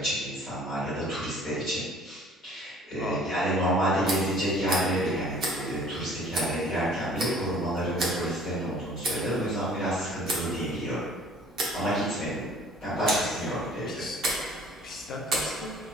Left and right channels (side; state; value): both; normal; correlation 0.53